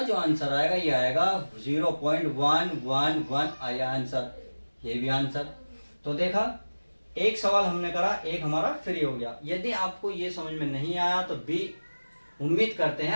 जो आंसर आएगा ये आएगा 0.111 आया आंसर, ये भी आंसर। तो देखा एक सवाल हमने करा, एक हमारा फ्री हो गया। यदि आपको ये समझ में नहीं आया तो भी उम्मीद करते हैं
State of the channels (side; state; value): both; inverted; correlation -1.00